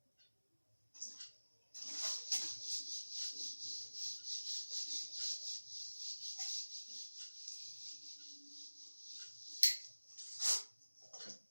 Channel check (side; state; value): both; inverted; correlation -1.00